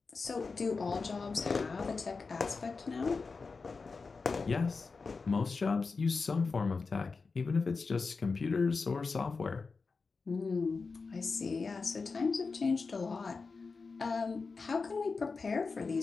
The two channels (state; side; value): quieter; right; 4.5 dB